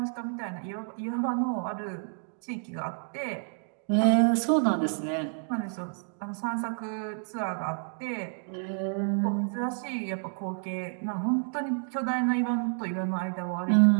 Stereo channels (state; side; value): silent; left; 58 dB below the other